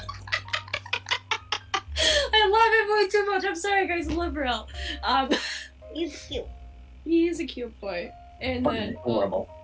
I love him way too much. I'm sorry, guys. I love Rill. He's cute. He's a cute boy. And then adorable.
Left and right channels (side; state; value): both; identical; correlation 1.00